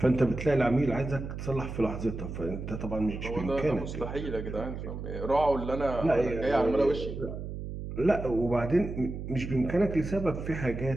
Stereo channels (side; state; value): right; noise; hum, 7 dB below the sound